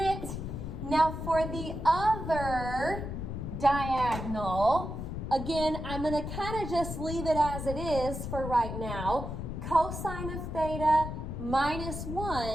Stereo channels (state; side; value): noise; left; rumble, 6 dB below the sound